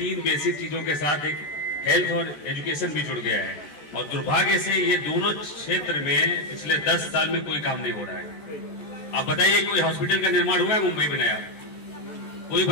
बेसिक चीजों के साथ एक हेल्थ और एजुकेशन भी जुड़ गया है। और दुर्भाग्य से ये दोनों क्षेत्र में पिछले 10 साल में कोई काम नहीं हो रहा है। आप बताइए, कोई हॉस्पिटल का निर्माण हुआ है मुंबई में नया? कोई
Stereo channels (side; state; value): right; late; 14 ms